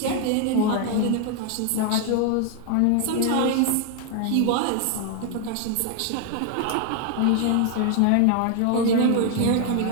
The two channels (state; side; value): different; both; correlation 0.00